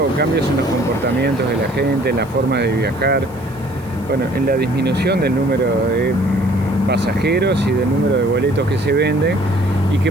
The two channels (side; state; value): right; noise; hiss, 26 dB below the sound